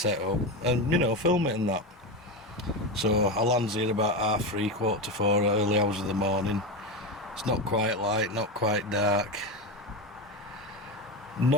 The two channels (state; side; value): normal; both; correlation 0.17